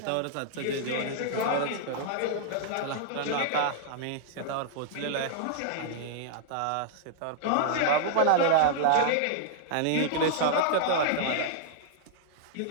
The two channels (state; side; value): different; both; correlation -0.01